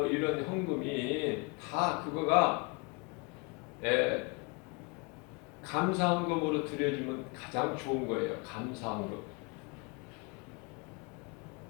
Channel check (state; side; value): quieter; right; 30.2 dB